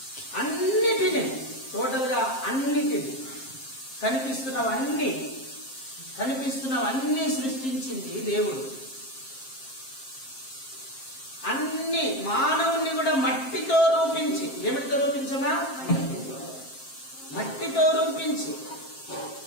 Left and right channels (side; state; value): right; late; 7.5 ms